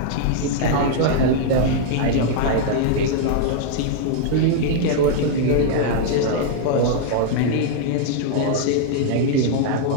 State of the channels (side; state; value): both; different; correlation -0.01